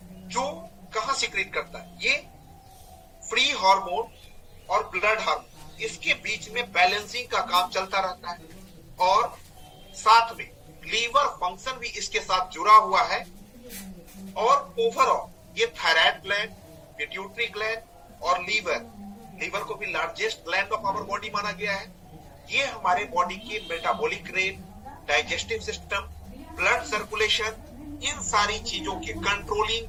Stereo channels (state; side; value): identical; both; correlation 1.00